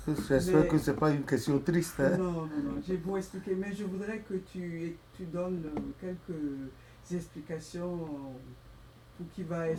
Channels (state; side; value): identical; both; correlation 1.00